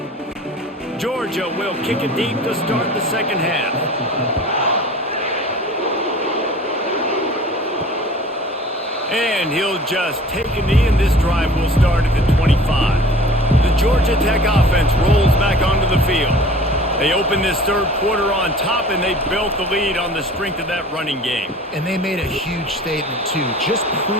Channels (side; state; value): both; normal; correlation 0.45